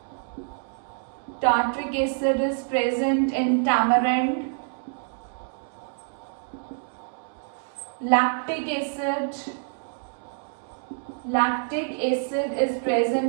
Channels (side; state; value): left; silent; 60 dB below the other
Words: acid is present in tamarind. Lactic acid is